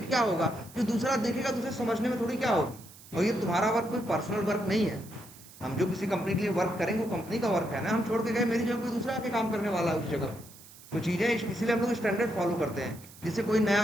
क्या होगा, जो दूसरा देखेगा तो उसे समझने में थोड़ी क्या होगी। और ये तुम्हारा वर्क कोई पर्सनल वर्क नहीं है। हम जो किसी कंपनी के लिए वर्क करेंगे वो कंपनी का वर्क है ना। हम छोड़ के गए, मेरी जगह कोई दूसरा आके काम करने वाला है उस जगह। तो चीजें इसीलिए हम लोग स्टैंडर्ड फॉलो करते हैं, जिससे कोई नया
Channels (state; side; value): noise; right; hiss, 20 dB below the sound